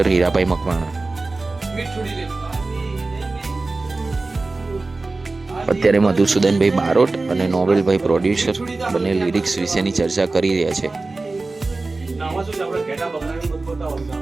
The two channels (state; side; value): quieter; left; 3.4 dB